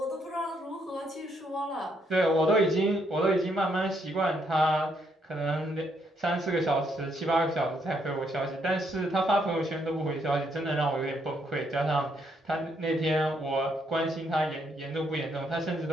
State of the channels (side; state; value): both; normal; correlation 0.74